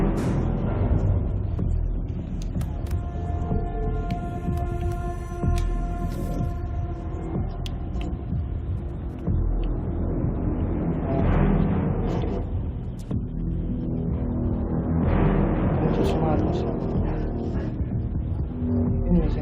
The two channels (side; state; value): both; identical; correlation 1.00